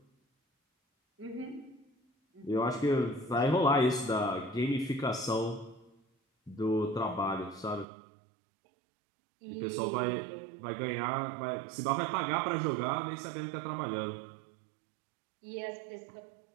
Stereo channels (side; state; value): left; drops out; at 7.9 s